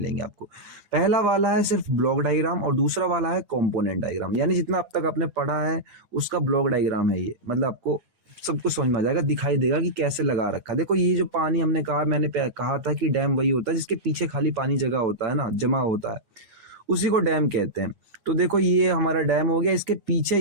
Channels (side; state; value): left; late; 9.8 ms